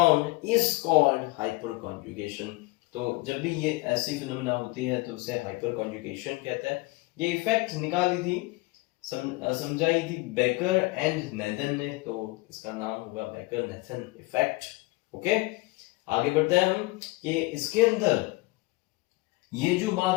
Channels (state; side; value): quieter; right; 22.8 dB